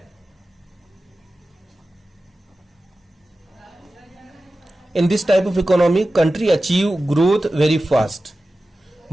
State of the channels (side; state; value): both; normal; correlation 0.94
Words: In this type of economy, country achieve growth very fast,